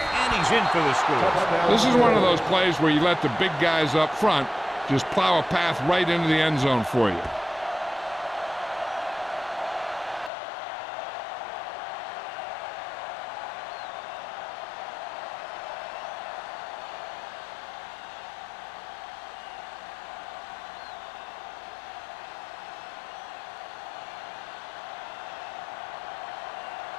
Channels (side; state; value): right; drops out; at 10.3 s